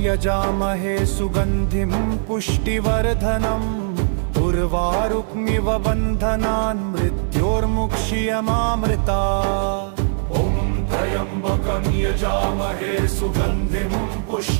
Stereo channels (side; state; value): left; silent; digital silence